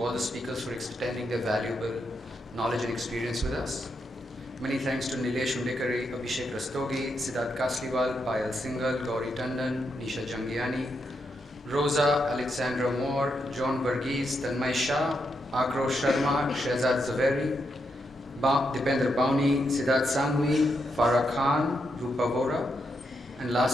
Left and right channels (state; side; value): normal; both; correlation 0.82